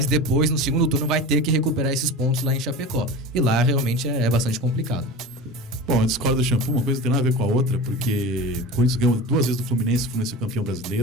depois, no segundo turno, vai ter que recuperar esses pontos lá em Chapecó. E lá realmente é bastante complicado. Bom, eu discordo do Shampoo, uma coisa não tem nada a ver com a outra, porque o Corinthians ganhou 2 vezes do Fluminense, o Fluminense é campeão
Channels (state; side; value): normal; both; correlation 0.31